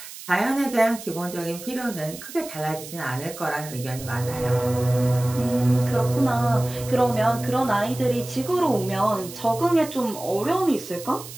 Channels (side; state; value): right; noise; hiss, 14 dB below the sound